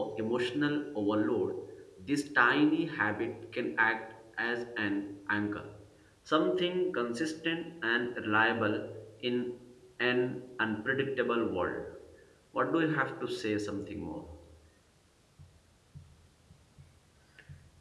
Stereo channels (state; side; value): identical; both; correlation 1.00